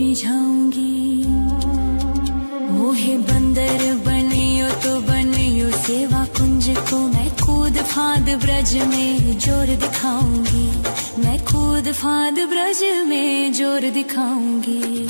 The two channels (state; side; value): inverted; both; correlation -1.00